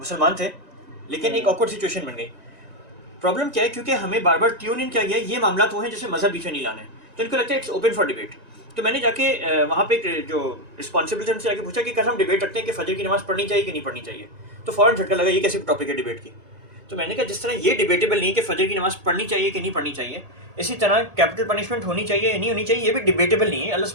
تھے لیکن ایک آکورڈ سچویشن بن گئی. پرابلم کیا ہے, کیونکہ ہمیں بار بار ٹیون ان کیا گیا یہ معاملات وہ ہیں جیسے مذہب پیچھے نہیں لانا ہے, تو ان کو لگتا ہے اٹس اوپن فار ڈیبیٹ. تو میں نے جا کے وہاں پہ جو رسپانسبل تھے ان سے آ کے پوچھا کہ کل ہم ڈیبیٹ رکھتے ہیں کہ فجر کی نماز پڑھنی چاہیے کہ نہیں پڑھنی چاہیے, تو فوراً جھٹکا لگا یہ کیسی ٹاپک ہے ڈیبیٹ کی. تو میں نے کہا جس طرح یہ ڈیبیٹیبل نہیں کہ فجر کی نماز پڑھنی چاہیے کہ نہیں پڑھنی چاہیے, اسی طرح کیپٹل پنشمنٹ ہونی چاہیے یا نہیں ہونی چاہیے یہ بھی ڈیبیٹیبل نہیں ہے, اللہ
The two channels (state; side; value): late; left; 1.8 ms